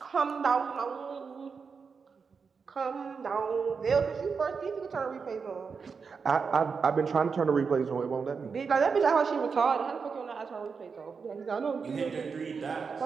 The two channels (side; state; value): left; quieter; 5.5 dB